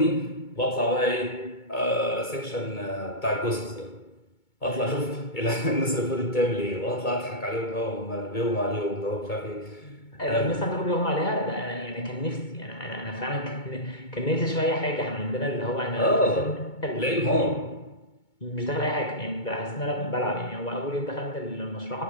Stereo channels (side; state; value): right; late; 2.2 ms